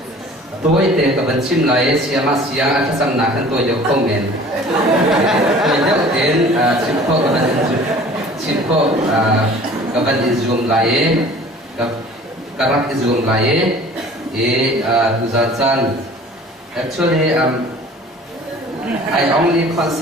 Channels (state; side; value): normal; both; correlation 0.47